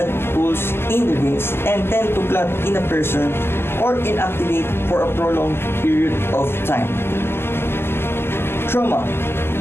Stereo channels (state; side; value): late; right; 0.11 ms